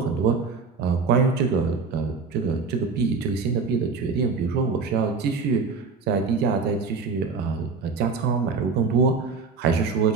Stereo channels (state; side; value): quieter; left; 4.7 dB